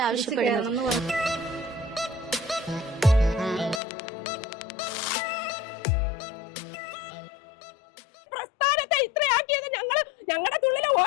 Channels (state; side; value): drops out; right; at 3.8 s